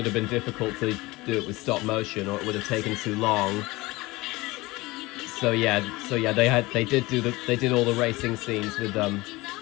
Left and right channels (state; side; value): quieter; right; 21.3 dB